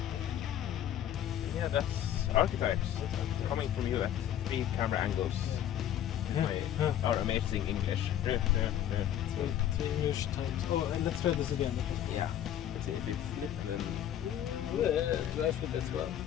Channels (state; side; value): quieter; right; 10.8 dB